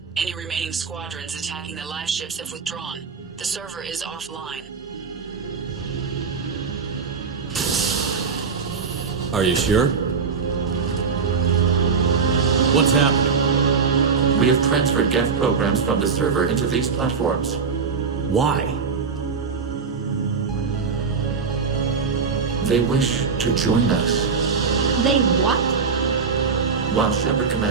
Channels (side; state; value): left; quieter; 5.4 dB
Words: Any remaining squadrons attacking the live ships have withdrawn. The server is offline. Are you sure? What's happening? We have transferred Geth programs from the server into these platforms. Why? They wish to join us. They what? While Shepard